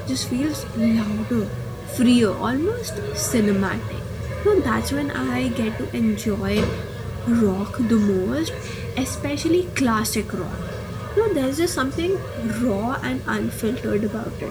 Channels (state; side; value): identical; both; correlation 1.00